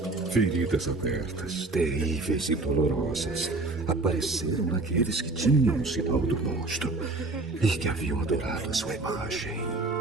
Feridas abertas, terríveis e dolorosas, apareceram naqueles que tinham o sinal do monstro e que haviam adorado a sua imagem.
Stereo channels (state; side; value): quieter; left; 3.2 dB